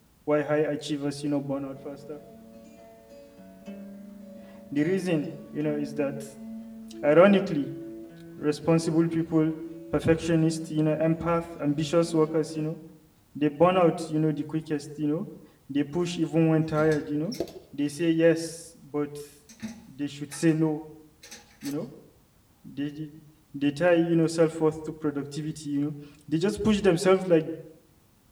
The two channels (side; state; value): both; identical; correlation 1.00